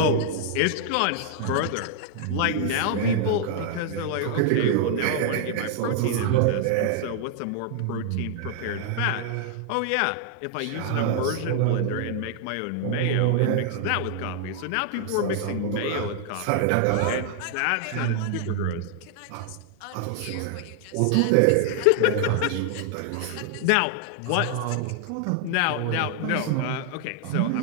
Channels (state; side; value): different; both; correlation 0.00